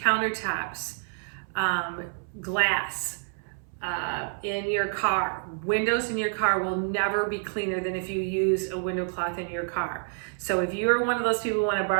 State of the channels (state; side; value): silent; left; 59 dB below the other